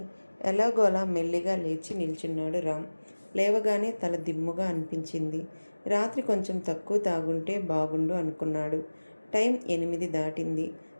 ఎలాగోలా మెల్లిగా లేచి నిల్చున్నాడు రామ్. లేవగానే తల దిమ్ముగా అనిపించింది. రాత్రి కొంచెం తక్కువ తాగుంటే బాగుండు అనుకున్నాడు. టైం 8 దాటింది.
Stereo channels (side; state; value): both; inverted; correlation -1.00